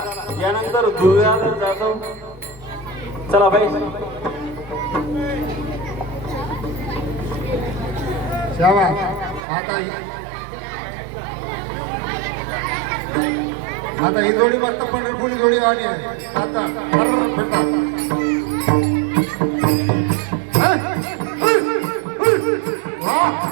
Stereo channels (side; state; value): left; drops out; at 9.4 s